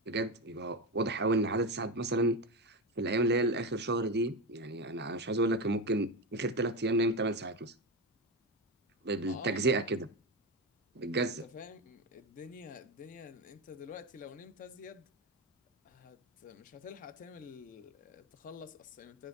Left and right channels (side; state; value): both; normal; correlation 0.17